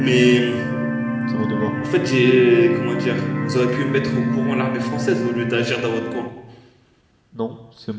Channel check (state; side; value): identical; both; correlation 1.00